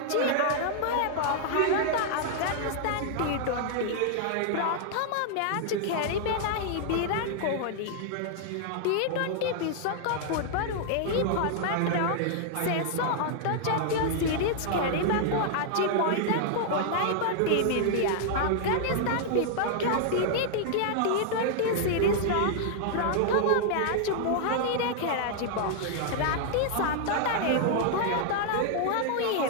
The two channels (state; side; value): different; both; correlation -0.01